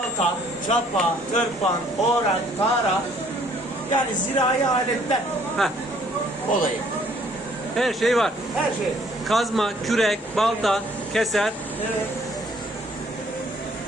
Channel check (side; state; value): both; normal; correlation 0.61